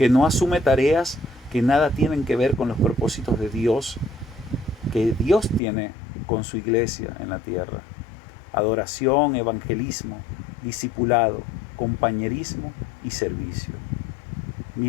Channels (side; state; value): right; drops out; at 5.6 s